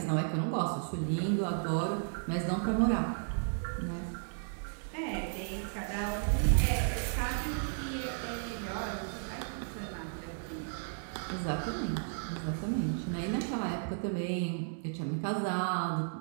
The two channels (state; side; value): silent; left; digital silence